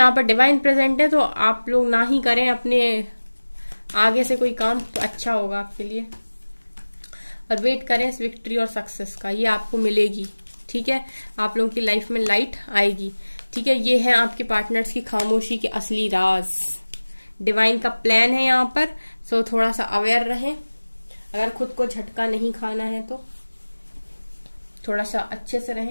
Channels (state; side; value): inverted; both; correlation -1.00